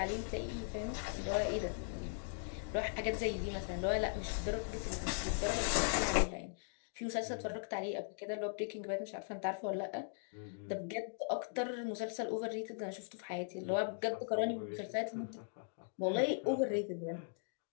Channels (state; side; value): silent; right; digital silence